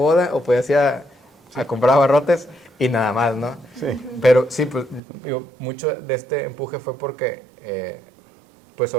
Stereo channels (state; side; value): drops out; left; at 5.0 s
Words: o podías ir a comprar abarrotes y nada más, ¿no? Sí. Pero sí, pues digo, mucho de este empuje fue porque, pues